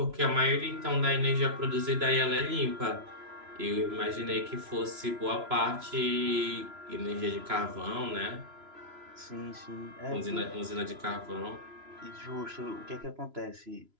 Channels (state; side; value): late; left; 3.0 ms